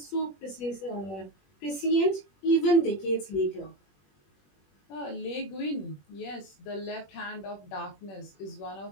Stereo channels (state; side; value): late; right; 21 ms